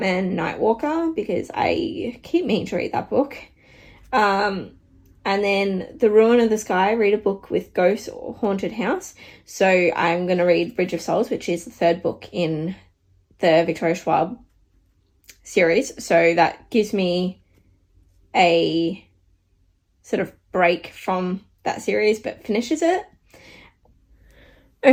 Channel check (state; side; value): identical; both; correlation 1.00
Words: Nightwalker, because I keep meaning to read that book. And then The Ruin of the Sky, read a book with ghosts or haunted house. So I'm going to read Bridge of Souls, which is the third book in the Victoria Schwab series. So that gives me a sort of break from that series, but finishes it.